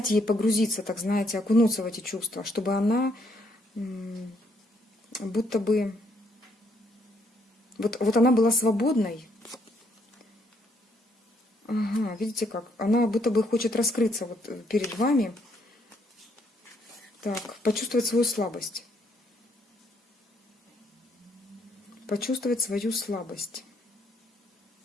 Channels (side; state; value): both; normal; correlation 0.71